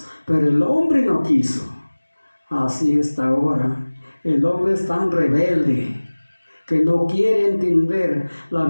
pero el hombre no quiso. Así está ahora. El hombre es tan rebelde que no quiere entender la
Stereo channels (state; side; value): inverted; both; correlation -1.00